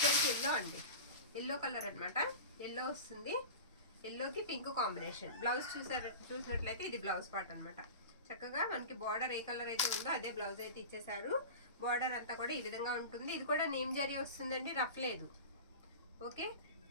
ఎల్లో అండి, ఎల్లో కలర్ అన్నమాట. ఎల్లో వస్తుంది, ఎల్లోకి పింక్ కాంబినేషన్. బ్లౌజ్ చూసినట్లయితే ఇది బ్లౌజ్ పార్ట్ అన్నమాట. చక్కగా మనకి బార్డర్ ఏ కలర్ అయితే ఉందో అదే బ్లౌజ్ అయితే ఇచ్చేసారు. బార్డర్ అంతా కూడా ఈ విధంగా ఉంటుంది. ఇది కూడా నేమ్ జరీ వస్తుందండి, రఫ్ లేదు. ఓకే,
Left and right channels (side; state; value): both; inverted; correlation -0.31